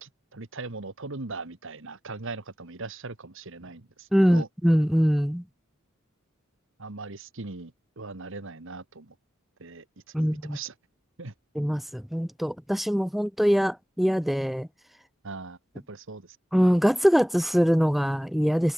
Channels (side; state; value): both; normal; correlation 0.97